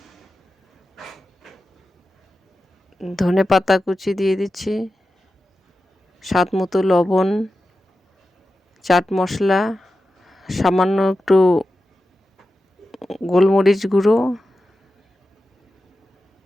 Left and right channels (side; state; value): both; normal; correlation 0.92